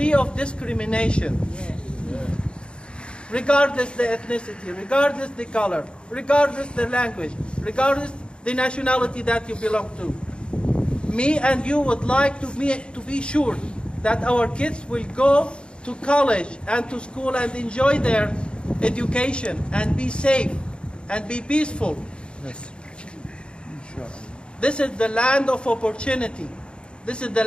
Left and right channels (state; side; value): late; right; 0.054 ms